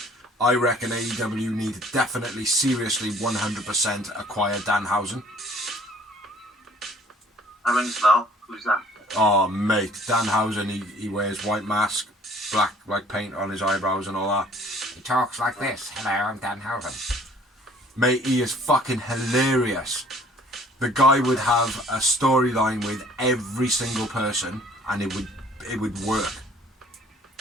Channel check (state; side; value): normal; both; correlation 0.55